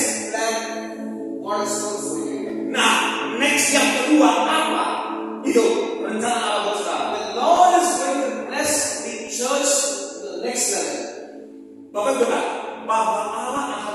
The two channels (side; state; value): both; identical; correlation 1.00